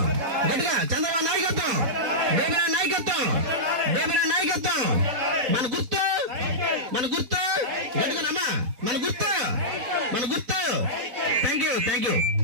గట్టిగా చంద్రబాబు నాయకత్వం, బేబినాయన నాయకత్వం, బేబినాయన నాయకత్వం. మన గుర్తు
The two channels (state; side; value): late; left; 4.2 ms